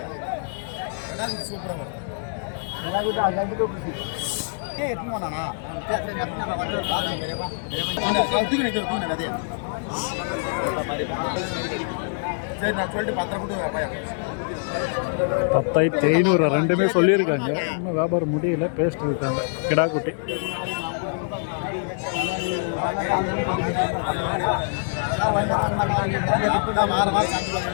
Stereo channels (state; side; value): silent; right; 62 dB below the other